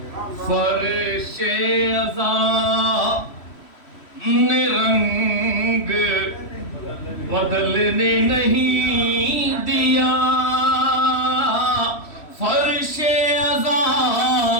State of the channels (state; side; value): late; right; 3.1 ms